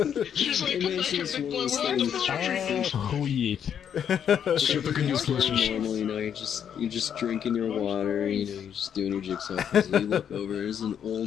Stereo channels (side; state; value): right; quieter; 8.6 dB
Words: She's like, And come then back here, she's big one of boy, those we're on the things- street. Oh, yeah. Shit, the good news, listeners. normal, you know, you're just drinking your water, you know, you're just doing your jigsaw puzzle. You look over, there's an